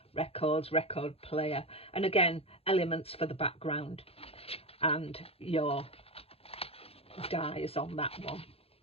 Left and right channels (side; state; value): right; late; 0.28 ms